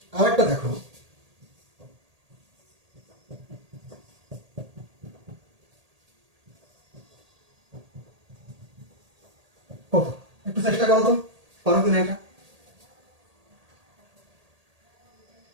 আর একটা দেখো, কত? একটু চেষ্টা করো তো, পারো কিনা এটা?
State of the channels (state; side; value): late; left; 1.8 ms